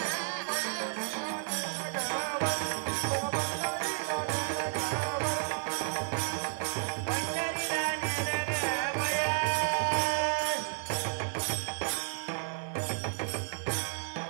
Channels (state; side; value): silent; left; 56 dB below the other